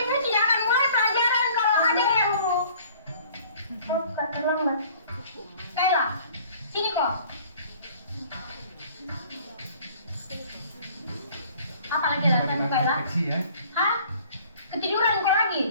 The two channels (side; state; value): both; inverted; correlation -0.53